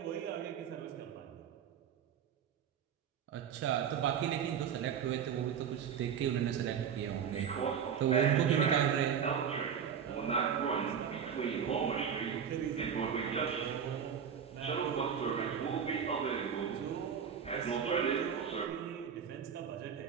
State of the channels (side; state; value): left; quieter; 7.8 dB